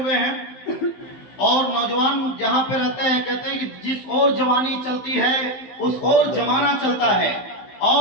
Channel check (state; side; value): late; right; 15 ms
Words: हैं, और नौजवान जहां पे रहते हैं कहते हैं कि जिस ओर जवानी चलती है उस ओर जमाना चलता है।